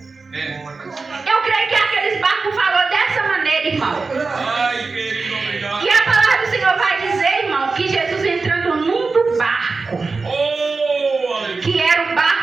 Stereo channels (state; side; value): quieter; left; 4.1 dB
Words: Eu creio que aqueles barcos falou dessa maneira, irmão. E a palavra do Senhor vai dizer, irmão, que Jesus entrando num do barco, que era o